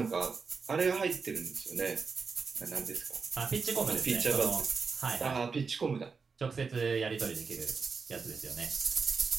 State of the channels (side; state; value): left; quieter; 5.1 dB